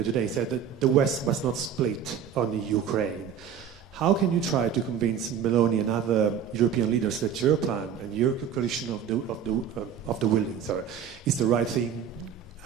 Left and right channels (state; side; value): quieter; left; 8.2 dB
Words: today, said that the West must not split on the Ukraine. How can you try to convince Meloni and other European leaders that your plan and your coalition of the willing is the right thing,